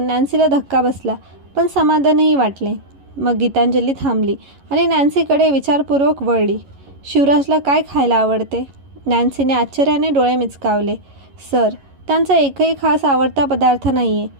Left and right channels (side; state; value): left; late; 11 ms